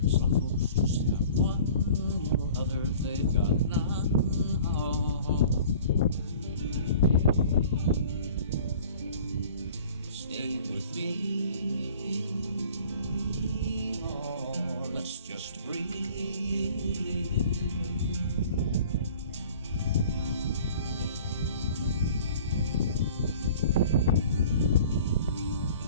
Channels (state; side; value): inverted; both; correlation -0.47